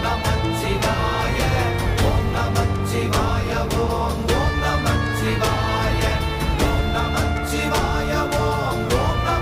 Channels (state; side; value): identical; both; correlation 1.00